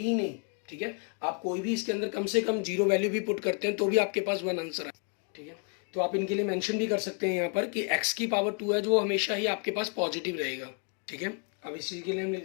नहीं, ठीक है, आप कोई भी इसके अंदर कम से कम 0 वैल्यू भी पुट करते हैं तो भी आपके पास 1 आंसर है, ठीक है। तो आप इनके लिए मेंशन भी कर सकते हैं यहाँ पर कि x⁴ है जो हमेशा ही आपके पास पॉजिटिव रहेगा, ठीक है। अब इस चीज़ के लिए हम लिख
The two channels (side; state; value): right; quieter; 38.4 dB